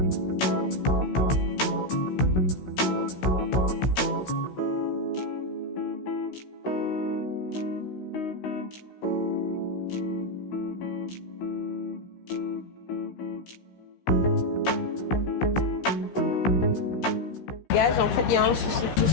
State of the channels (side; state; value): right; late; 16 ms